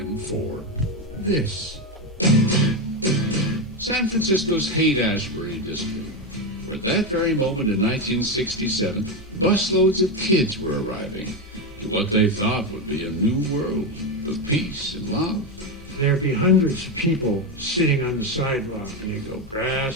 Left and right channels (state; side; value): normal; both; correlation 0.11